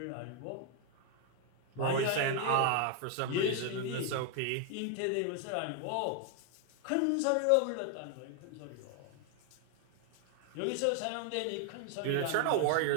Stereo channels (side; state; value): both; different; correlation 0.00